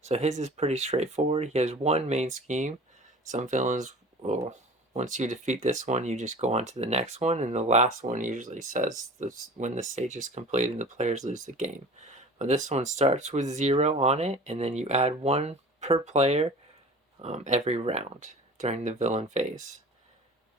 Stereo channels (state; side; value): normal; both; correlation 0.41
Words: So his is pretty straightforward. He has one main scheme. Some villains will, once you defeat this one, you just go on to the next one, and the last one usually says this, when the stage is completed, the players lose the game. But this one starts with 0 on it, and then you add 1 per player every round during the villain phase.